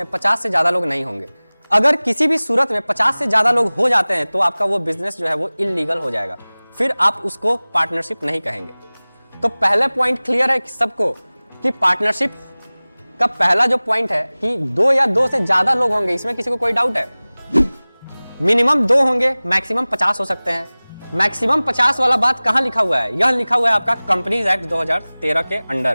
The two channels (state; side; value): inverted; both; correlation -1.00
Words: 50 से ज्यादा लोग नहीं होंगे। अगर किसी भी सूरत में 50 से ज्यादा लोग हो जाते हैं तो आपका वो बिजनेस जो है वो इल्लीगल हो जाएगा, फिर आप उसको पार्टनरशिप नहीं कहेंगे। तो पहले पॉइंट क्लियर है सबको कि पार्टनरशिप का पहला जो पॉइंट है कि 2 या 2 से ज्यादा लोग होंगे, इसमें किसी को कोई डाउट है? मिनिमम 2 होंगे, मैक्सिमम 50 हो सकते हैं। मैक्सिमम 50 वाला बात कहां लिखा हुआ है? यह लिखा हुआ है आपका कंपनीज एक्ट 2013 के